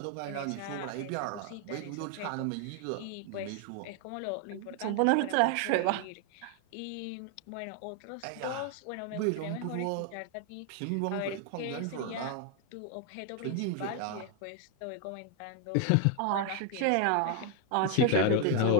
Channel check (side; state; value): both; different; correlation 0.00